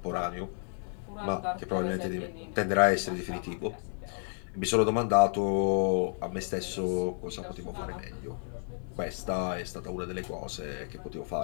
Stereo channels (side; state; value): right; silent; 57 dB below the other